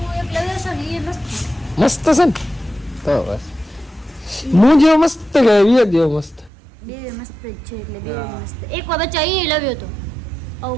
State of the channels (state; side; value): drops out; left; at 6.5 s